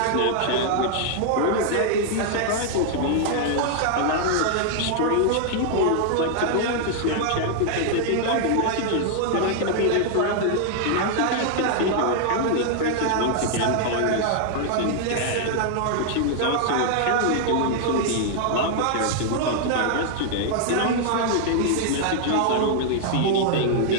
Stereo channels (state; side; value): different; both; correlation 0.00